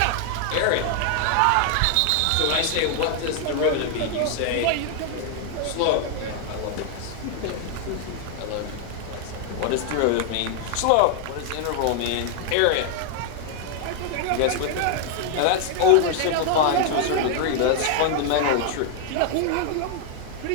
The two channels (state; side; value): different; both; correlation 0.00